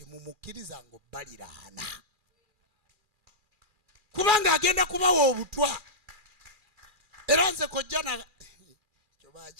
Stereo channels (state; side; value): late; left; 2.4 ms